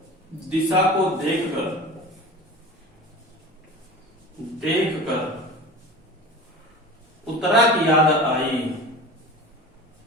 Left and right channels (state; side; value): normal; both; correlation 0.34